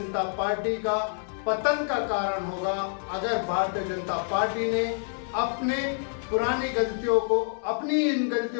पार्टी का पतन का कारण होगा। अगर भारतीय जनता पार्टी ने अपने पुरानी गलतियों को, अपनी इन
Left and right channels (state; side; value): silent; right; 60 dB below the other